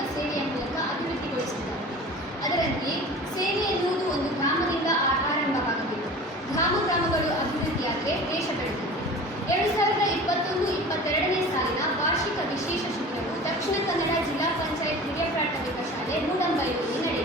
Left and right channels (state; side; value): normal; both; correlation 0.39